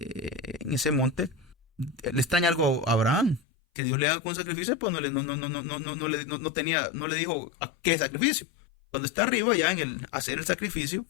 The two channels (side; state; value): right; drops out; at 3.4 s